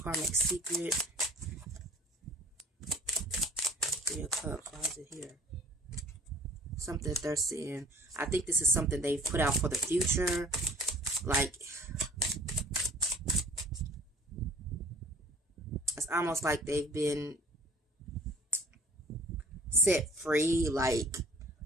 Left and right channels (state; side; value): normal; both; correlation 0.50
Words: karmic secret. Three of Cups. Why is it here? Something that they're seeing. I think this is something they've put out for the future. Like, it's almost like they've been set free. Like,